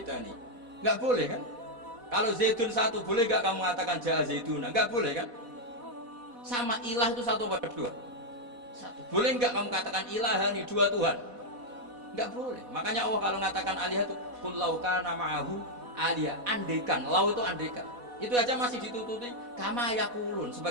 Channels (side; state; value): left; late; 4.1 ms